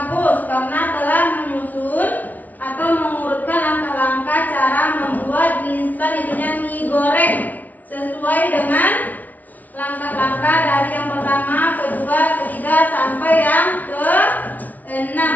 karena telah menyusun atau mengurutkan langkah-langkah cara membuat mie instan, itunya mie goreng, sesuai dengan langkah-langkah dari yang pertama, kedua, ketiga sampai yang ke-6.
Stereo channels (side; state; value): right; late; 0.077 ms